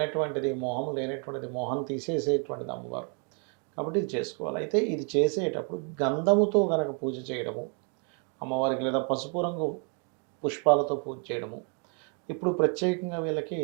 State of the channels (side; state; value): left; quieter; 39.4 dB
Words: మోహం లేనటువంటిది, మోహం తీసేసేటువంటిది అమ్మవారు. కాబట్టి ఇది చేసుకోవాలి. అయితే ఇది చేసేటప్పుడు గంధముతో గనక పూజ చేయడము అమ్మవారికి, లేదా పసుపు రంగు పుష్పాలతో పూజ చేయడము. ఇప్పుడు ప్రత్యేకంగా వీళ్ళకి